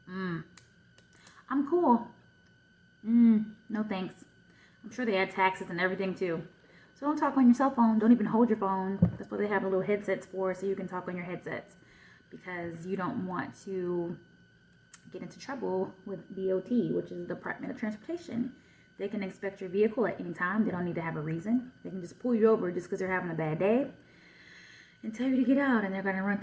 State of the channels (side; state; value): both; identical; correlation 1.00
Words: I'm cool. No thanks. I'm sure they add taxes and everything too. So don't talk on your cell phone. Don't even hold your phone. That's what they have the little headsets for, so you can talk on your headsets. Because you don't want to get into trouble with DOT, which is the Department of Transportation. They can inspect your vehicle at any time. They don't need to have a reason. They can just pull you over just because they're having a bad day and tell you to get out, and they're going to run